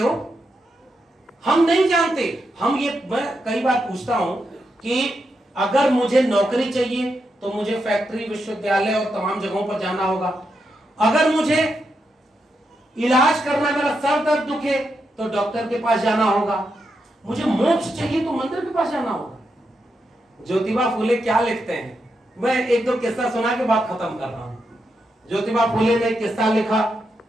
हम नहीं जानते, हम ये, मैं कई बार पूछता हूं कि अगर मुझे नौकरी चाहिए तो मुझे फैक्ट्री, विश्वविद्यालय और तमाम जगहों पर जाना होगा। अगर मुझे इलाज करना, मेरा सर दर्द दुखे तो डॉक्टर के पास जाना होगा। मुझे मोक्ष चाहिए तो मंदिर के पास जाना होगा। ज्योतिबा फूले क्या लिखते हैं, मैं एक दो किस्सा सुना के बात खत्म कर रहा हूं। ज्योतिबा फूले ने एक किस्सा लिखा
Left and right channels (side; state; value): both; normal; correlation 0.84